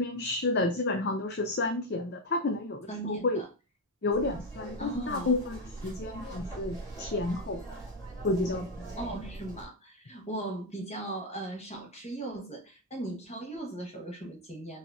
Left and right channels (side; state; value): both; normal; correlation 0.06